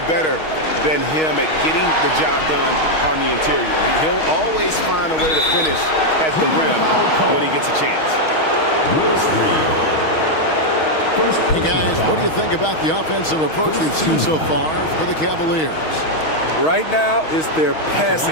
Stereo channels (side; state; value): right; late; 6.3 ms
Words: better than him at getting the job done on the interior. He'll always find a way to finish at the rim when he gets a chance. Hey guys, what do you think about the offensive approach we've seen so far for the Cavaliers? Right now, it's their